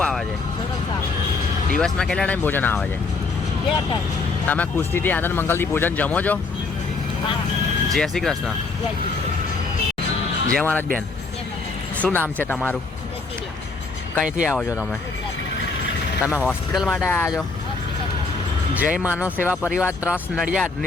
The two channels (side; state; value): right; quieter; 4.0 dB